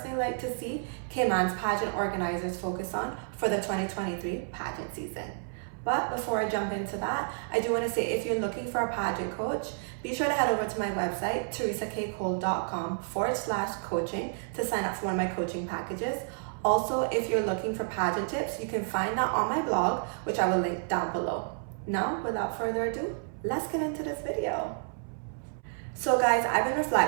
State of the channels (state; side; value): silent; left; 58 dB below the other